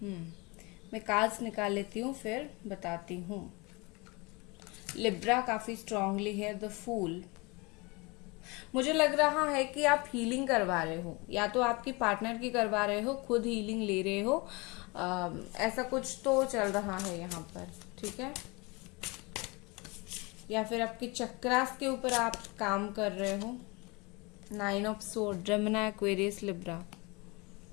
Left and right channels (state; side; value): quieter; right; 26.6 dB